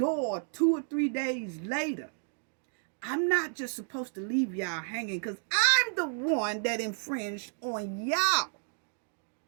2 or 3 days later, I'm not just supposed to leave y'all hanging, because I'm the one that infringed on y'all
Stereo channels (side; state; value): left; silent; 57 dB below the other